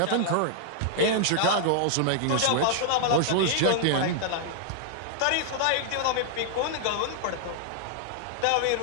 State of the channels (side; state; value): both; different; correlation -0.01